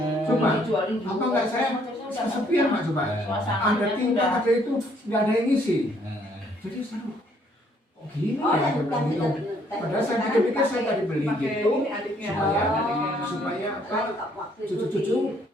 Coba, Dijualin apa enggak saya kesepian Pak coba. Ada Suasananya tuh tingkat udah ada itu nggak ada yang ngisi. Hmm. Jadi saya oh gini Oh, ya, yang saya bilang gitu. benar. Padahal saya pikir-pikir saya tadi beli Pakai gitu ini adiknya. supaya adiknya. supaya apa Waktu cucu-cucu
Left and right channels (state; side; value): normal; both; correlation 0.66